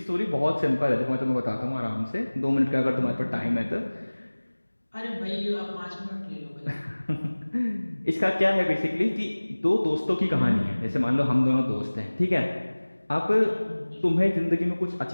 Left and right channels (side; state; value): both; inverted; correlation -1.00